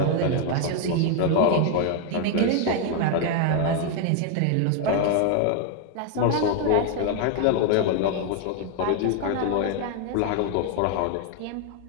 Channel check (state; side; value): different; both; correlation 0.00